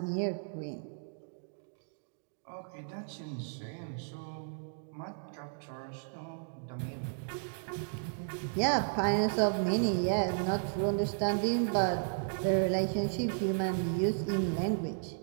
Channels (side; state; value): left; silent; digital silence